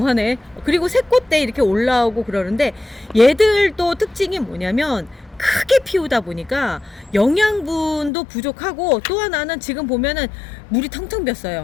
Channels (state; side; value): drops out; right; at 8.1 s